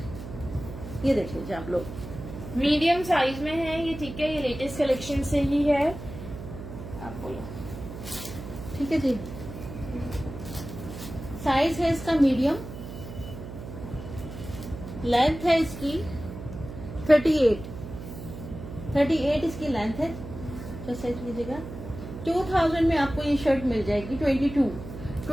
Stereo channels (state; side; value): noise; right; hum, 11 dB below the sound